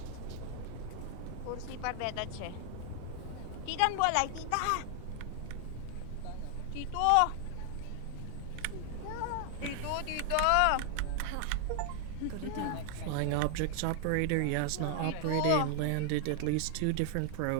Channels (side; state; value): both; different; correlation 0.00